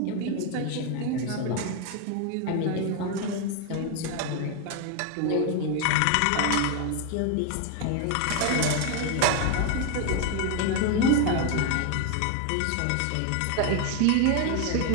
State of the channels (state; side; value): different; both; correlation 0.01